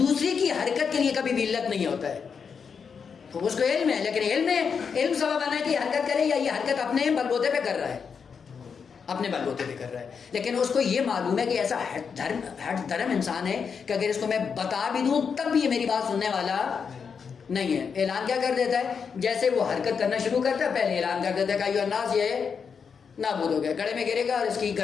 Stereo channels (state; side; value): quieter; right; 6.2 dB